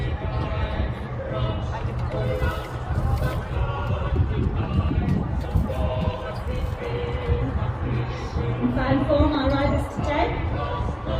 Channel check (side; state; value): both; identical; correlation 1.00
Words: In fine form, our riders today.